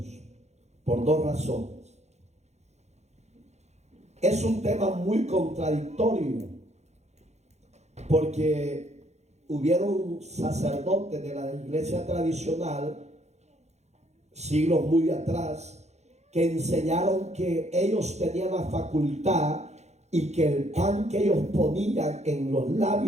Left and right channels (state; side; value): late; left; 0.32 ms